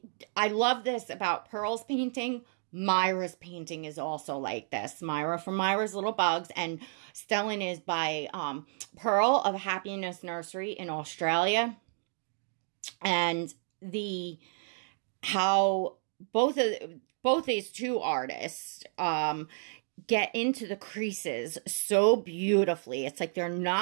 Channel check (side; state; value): left; silent; digital silence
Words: I love this about Pearl's painting. Myra's painting is also like this. Myra from Myra's Little Bugs, and Stellan is by Pearl of Happiness Nursery in Australia. And how both these two artists get into the creases so beautifully. It's like they're